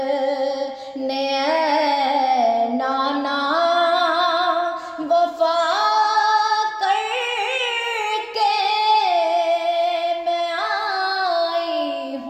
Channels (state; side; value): identical; both; correlation 1.00